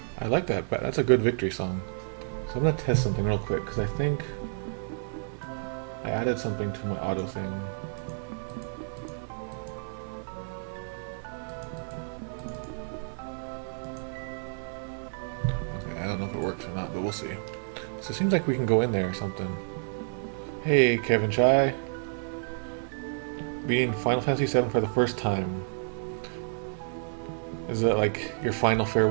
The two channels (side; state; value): left; silent; 58 dB below the other